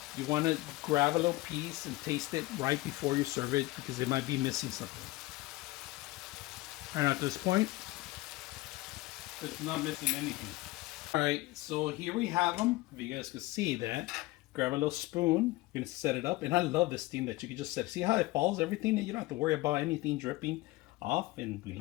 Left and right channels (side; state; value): right; quieter; 19.6 dB